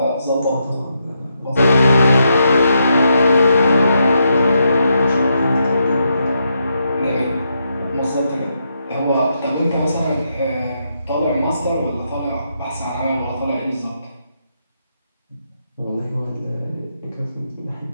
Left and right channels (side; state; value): both; inverted; correlation -0.81